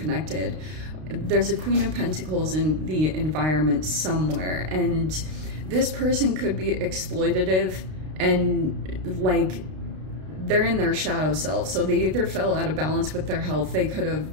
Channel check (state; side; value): late; left; 32 ms